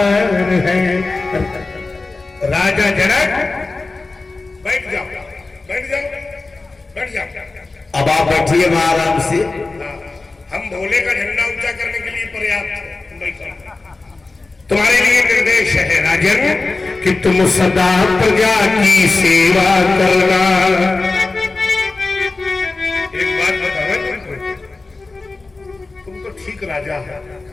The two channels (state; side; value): quieter; right; 3.5 dB